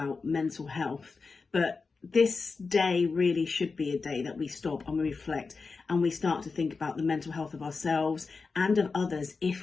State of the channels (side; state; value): right; quieter; 4.5 dB